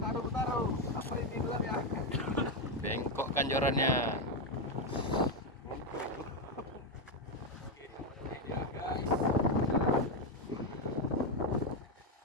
Apa ini dulu ya? Bengkok kan jorannya.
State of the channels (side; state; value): both; normal; correlation 0.06